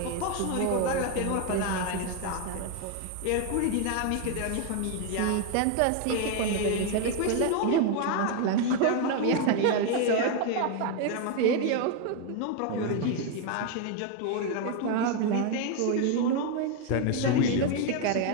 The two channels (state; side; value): different; both; correlation 0.01